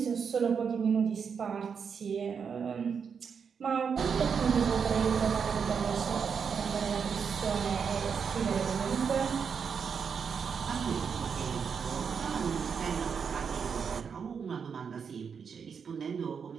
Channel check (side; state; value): left; quieter; 6.4 dB